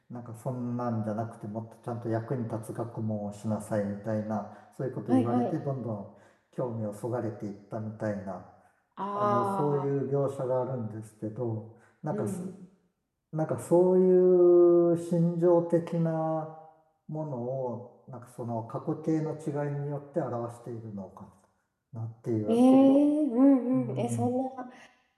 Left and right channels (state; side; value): identical; both; correlation 1.00